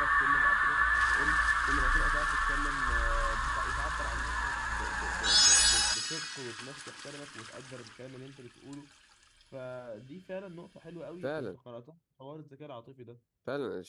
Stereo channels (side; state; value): both; identical; correlation 1.00